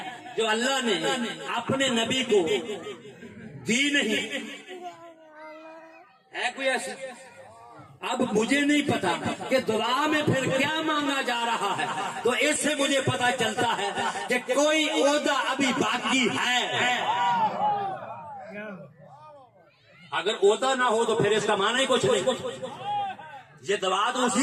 जो अल्लाह ने अपने नबी को दी नहीं? है कोई ऐसी? अब मुझे नहीं पता कि दुआ में फिर क्या मांगा जा रहा है, तो इससे मुझे पता चलता है कि कोई ओहदा अभी बाकी है। अगर ओहदा ना हो तो फिर इसका माना ही कुछ नहीं। ये दुआ तो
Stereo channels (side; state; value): both; identical; correlation 1.00